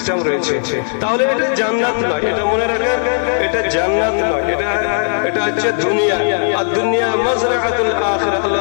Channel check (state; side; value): silent; right; digital silence